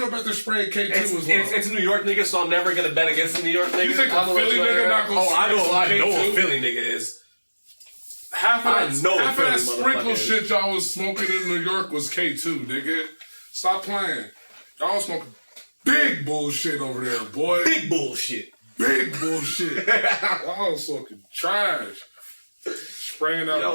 they're spraying K2 as well? It's New York niggas, so I'm never gonna bet against the New York niggas. You think a Philly nigga not gonna I know K2? a Philly nigga is. Half of that sprinkle motherfucker shit y'all was smoking in New York was K2, nigga. Stop playing. Y'all was smoking big bullshit over there, boy. Big bullshit. Big bullshit. Y'all was smoking trash. Spraying out.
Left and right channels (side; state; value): both; inverted; correlation -1.00